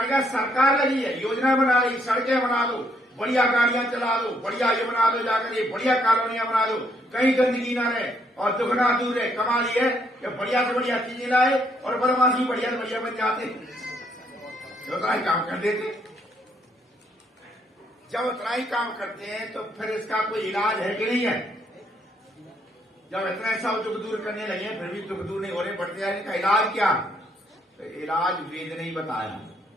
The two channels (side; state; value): both; normal; correlation 0.71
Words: क्या? सरकार लगी है, योजना बना रही, सड़कें बना दो, बढ़िया गाड़ियां चला दो, बढ़िया ये बना दो, जाकर ये बढ़िया कॉलोनियां बना दो, कहीं गंदगी ना रहे और दुख ना दूर रहे। कमाल ये है कि बढ़िया से बढ़िया चीजें लाए और बदमाशी बढ़िया से बढ़िया बन जाते, उतना ही काम कर देते। जब उतना ही काम करते हैं तो फिर इसका कोई इलाज है कि नहीं है? जब इतना सब दुख दूर करने लगे फिर भी दुख दूर नहीं हो रहे, बढ़ते जाने का इलाज क्या? तो इलाज वेद ने ही बताया।